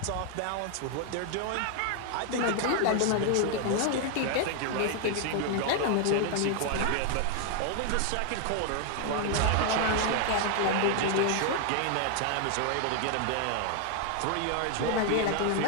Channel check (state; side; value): different; both; correlation 0.00